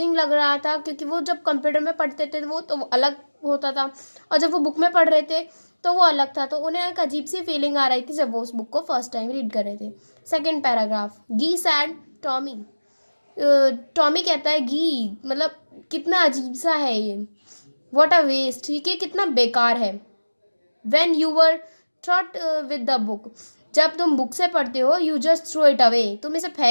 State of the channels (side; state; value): both; inverted; correlation -1.00